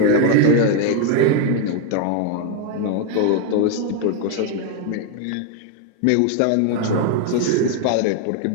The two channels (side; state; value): both; different; correlation 0.01